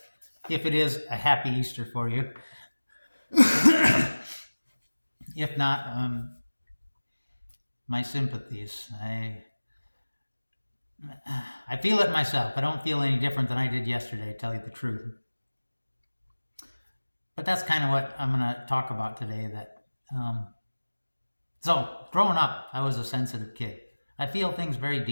If it is a happy Easter for you. If not, my sympathies. I feel it myself. I don't feel any different than I did yesterday, to tell you the truth. But that's kind of what I'm going to talk about today. So, growing up, I was a sensitive kid. I feel things very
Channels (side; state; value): both; inverted; correlation -1.00